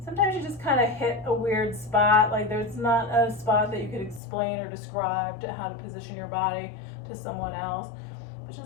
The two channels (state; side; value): drops out; right; at 4.2 s